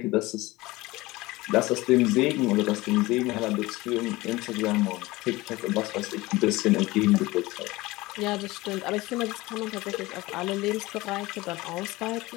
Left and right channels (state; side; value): quieter; right; 20.3 dB